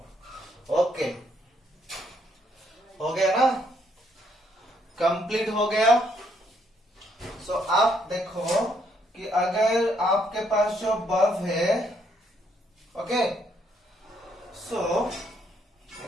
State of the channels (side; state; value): both; normal; correlation 0.71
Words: ओके, हो गया ना, कंप्लीट हो गया। सो आप देखो कि अगर आपके पास जो बल्ब है, ओके, सो